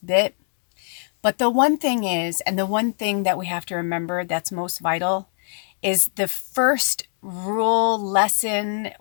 bit. But the one thing is, and the one thing that we have to remember that's most vital, is the first rule, lesson,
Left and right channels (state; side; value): silent; right; 64 dB below the other